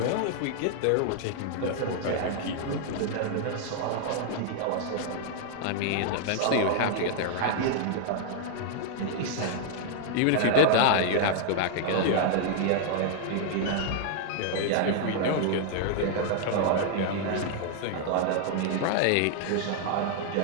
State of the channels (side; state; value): both; different; correlation 0.00